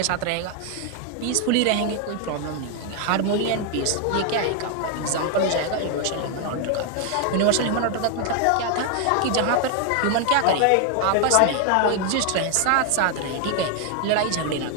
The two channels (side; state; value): both; different; correlation 0.01